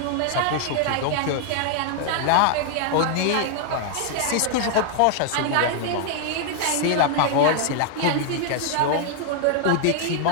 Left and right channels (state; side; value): different; both; correlation 0.00